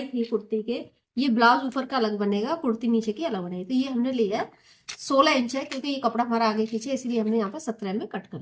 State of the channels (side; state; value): both; identical; correlation 1.00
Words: थी कुर्ती के, ये ब्लाउज ऊपर का अलग बनेगा, कुर्ती नीचे की अलग बनेगी। तो ये हमने लिया 16 इंच है, क्योंकि ये कपड़ा हमारा आगे पीछे, इसलिए हमने यहाँ पर 17 में कट कर